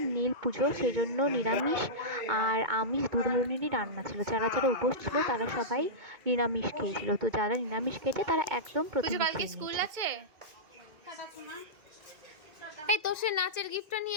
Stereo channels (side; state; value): left; late; 2.2 ms